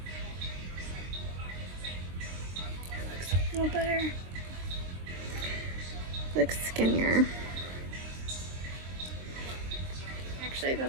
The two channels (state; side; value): late; left; 23 ms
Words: It looks a little better. Looks skinnier. I